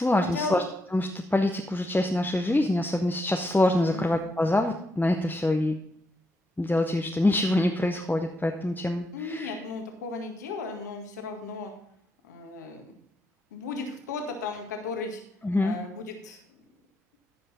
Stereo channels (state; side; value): normal; both; correlation 0.81